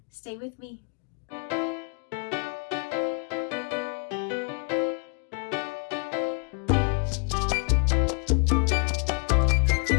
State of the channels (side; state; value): right; quieter; 36.5 dB